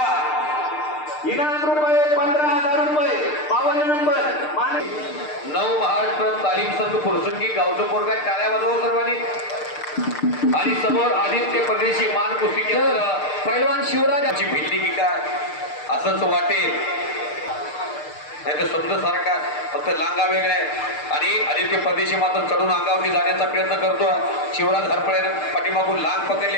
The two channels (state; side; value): late; right; 6.6 ms